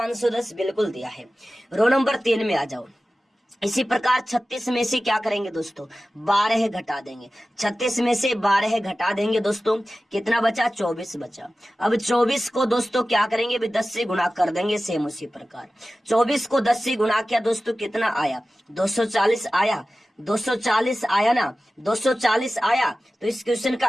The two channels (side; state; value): both; normal; correlation 0.95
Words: बिल्कुल दिया है। रो नंबर 3 में आ जाओ। इसी प्रकार 36 में से क्या करेंगे दोस्तों, 12 घटा देंगे। 36 में से 12 घटा देंगे दोस्तों, कितना बचा, 24 बचा। अब 24 को दोस्तों क्या करेंगे, 10 से गुणा कर देंगे, सेम उसी प्रकार। 24 को 10 से गुणा किया दोस्तों, कितना आया, 240 आया। 240 आया ना, 240 आया। तो इस क्वेश्चन का